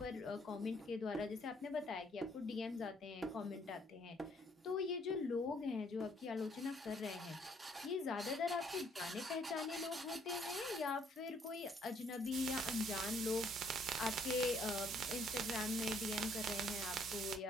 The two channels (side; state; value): both; normal; correlation 0.66